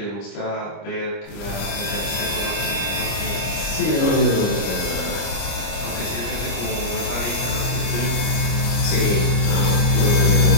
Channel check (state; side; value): late; right; 25 ms